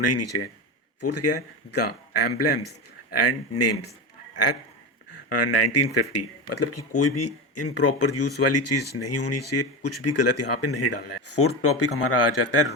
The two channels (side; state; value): both; normal; correlation 0.20